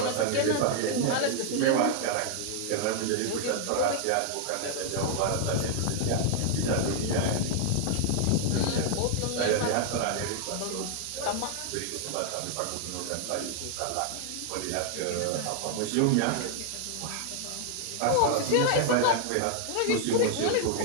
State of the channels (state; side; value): different; both; correlation 0.00